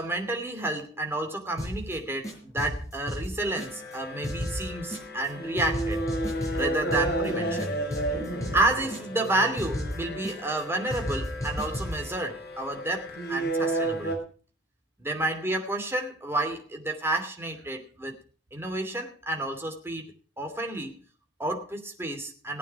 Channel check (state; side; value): normal; both; correlation 0.46